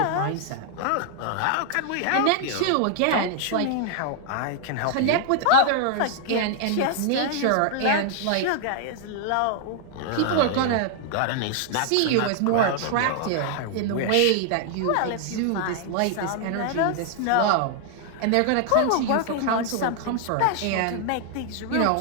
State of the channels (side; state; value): both; different; correlation 0.00